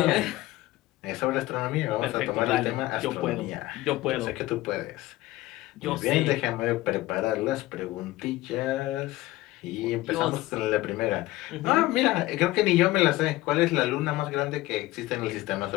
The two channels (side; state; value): right; quieter; 17.8 dB